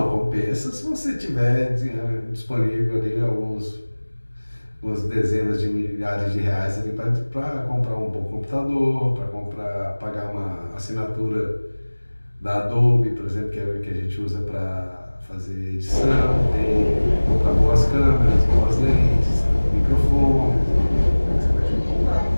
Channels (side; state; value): both; inverted; correlation -1.00